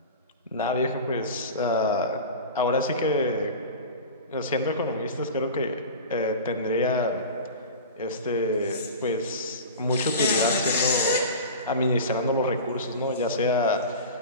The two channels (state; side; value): inverted; both; correlation -0.32